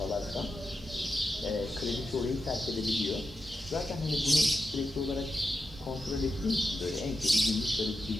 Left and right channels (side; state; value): both; normal; correlation 0.88